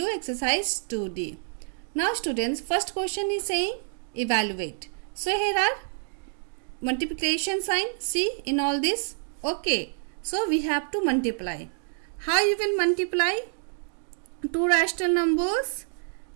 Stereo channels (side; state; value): left; silent; digital silence